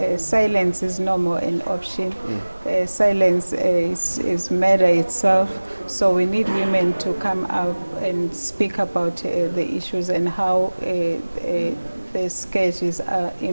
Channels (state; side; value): inverted; both; correlation -1.00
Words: silence is no more an option. Silence is murder itself. So we need women to come out and speak about the issues and how the scourges are